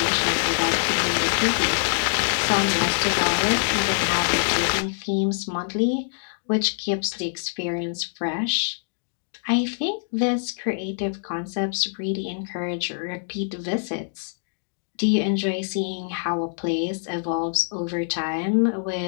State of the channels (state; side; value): silent; right; digital silence